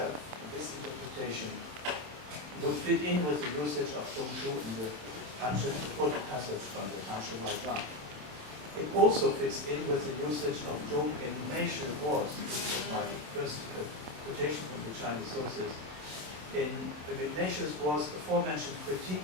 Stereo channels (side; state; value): left; late; 27 ms